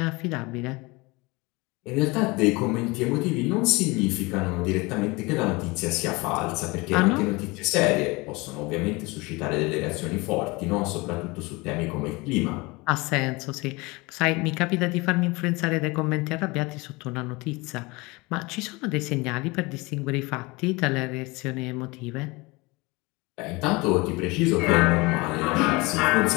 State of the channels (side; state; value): right; quieter; 24.5 dB